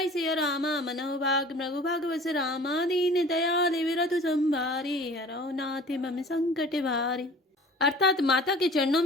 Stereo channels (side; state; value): both; normal; correlation 0.45